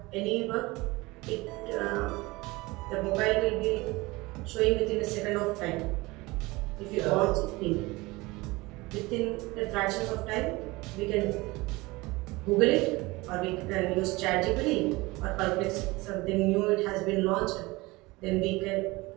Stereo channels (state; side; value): quieter; left; 22.2 dB